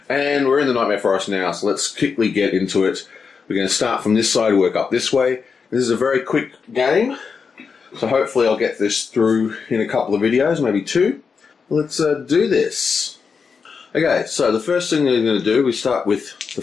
And we're in the Nightmare Forest now, so let's quickly get into it. We're going to start from this side, work up this way. This is a very quick game, so hopefully I'll get this through in a couple of videos, maybe 2. Let's do this. Okay, so the first thing we're going to do, we start with the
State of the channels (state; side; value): quieter; right; 5.6 dB